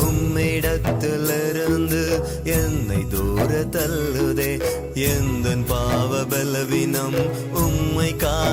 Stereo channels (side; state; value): both; identical; correlation 1.00